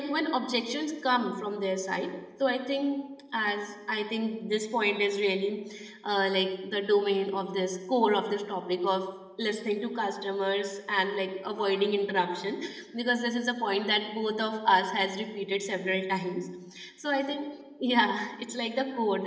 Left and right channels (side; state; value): both; identical; correlation 1.00